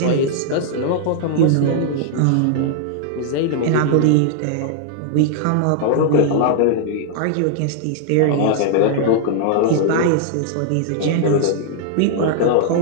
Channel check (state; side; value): different; both; correlation -0.01